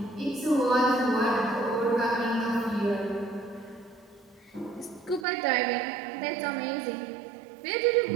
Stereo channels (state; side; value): drops out; left; at 5.2 s